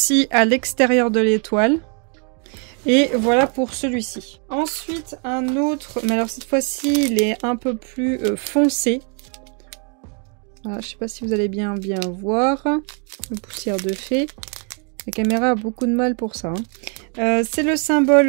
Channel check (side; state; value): left; quieter; 39.2 dB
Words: à l'extérieur de l'étoile. Et voilà pour celui-ci. Ensuite, un autre, mais alors cette fois-ci, il est un peu plus foncé. Voilà, je sais pas si vous allez bien voir. Le poussière de fée. La caméra a beaucoup de mal pour ça. C'est le